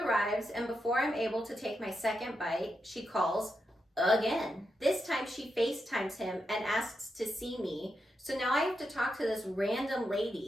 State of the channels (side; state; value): both; normal; correlation 0.85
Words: and before I'm able to take my second bite, she calls again. This time she FaceTimes him and asks to see me. So now I have to talk to this random